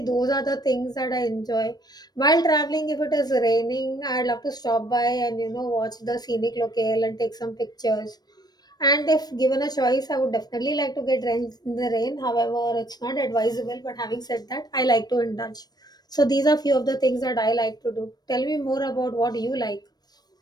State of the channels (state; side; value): late; right; 0.19 ms